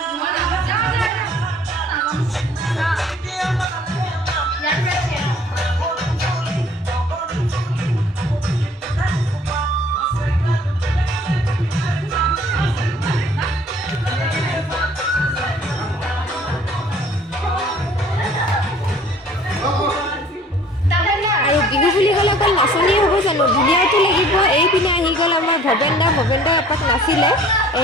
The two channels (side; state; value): both; normal; correlation 0.53